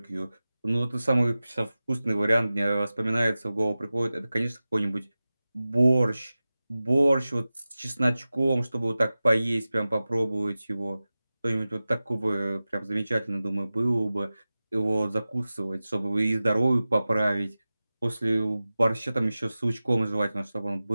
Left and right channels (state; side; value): inverted; both; correlation -0.96